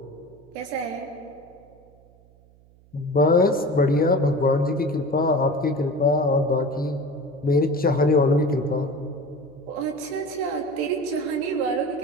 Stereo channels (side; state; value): right; noise; hum, 28 dB below the sound